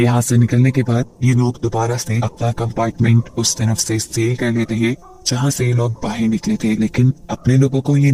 यहाँ से निकलने के बाद ये लोग दोबारा से अपना कंपार्टमेंट उस तरफ से सील कर लेते हैं जहाँ से ये लोग बाहर निकले थे, लेकिन अपने लोगों को ये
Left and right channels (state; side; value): identical; both; correlation 1.00